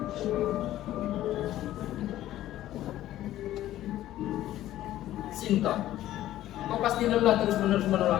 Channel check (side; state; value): right; quieter; 13.8 dB